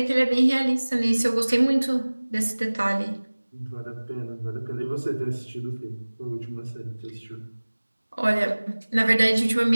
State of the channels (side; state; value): both; inverted; correlation -1.00